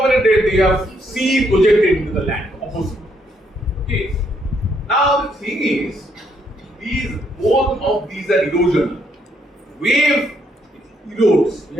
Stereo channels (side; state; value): both; normal; correlation 0.73